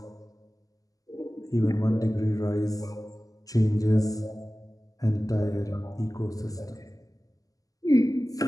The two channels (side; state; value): right; late; 0.17 ms